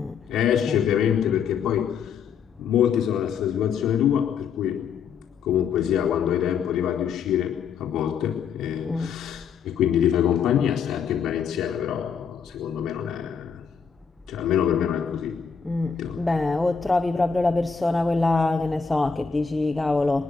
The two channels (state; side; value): quieter; right; 6.4 dB